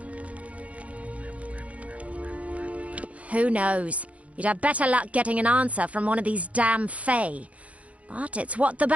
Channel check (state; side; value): late; left; 0.065 ms